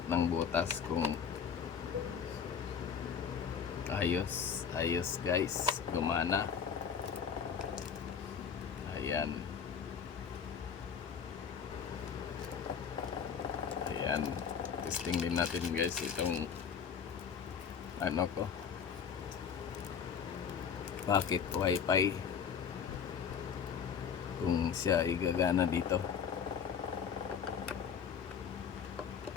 ng butas kung ayos guys, gumana. Ayan, ayan, testing din natin guys itong ano ko, pocket wifi, kung siya igagana dito.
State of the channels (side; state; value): right; quieter; 7.1 dB